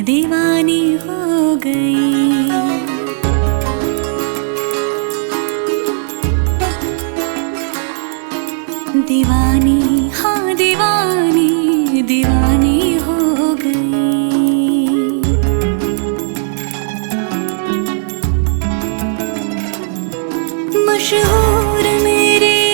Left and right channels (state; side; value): silent; left; digital silence